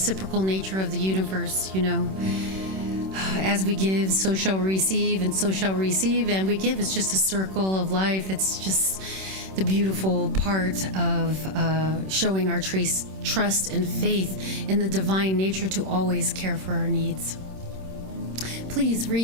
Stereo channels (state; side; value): late; left; 26 ms